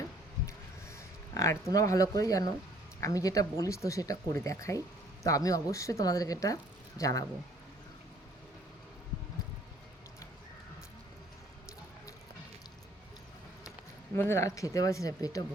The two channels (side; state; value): both; normal; correlation 0.59